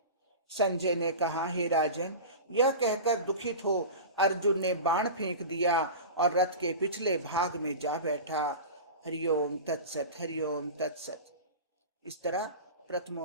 संजय ने कहा, हे राजन, यह कहकर दुखित हो अर्जुन ने बाण फेंक दिया और रथ के पिछले भाग में जा बैठा। हरिओम तत्सत, हरिओम तत्सत। इस तरह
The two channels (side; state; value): both; inverted; correlation -0.30